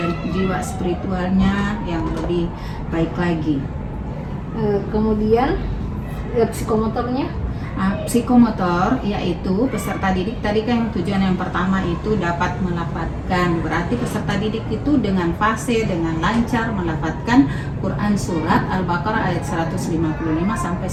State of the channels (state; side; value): identical; both; correlation 1.00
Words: jiwa spiritualnya yang lebih baik lagi. Kemudian psikomotornya? Psikomotor yaitu peserta didik tadi kan tujuan yang pertama itu dapat melafadzkan, berarti peserta didik itu dengan fasih, dengan lancar melafadzkan Quran surat Al-Baqarah ayat 155 sampai